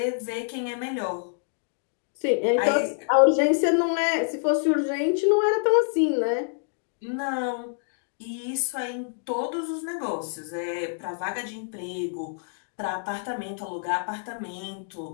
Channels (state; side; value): silent; right; digital silence